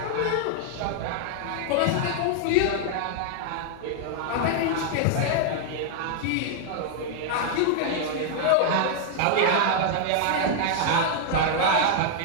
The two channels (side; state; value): both; different; correlation 0.00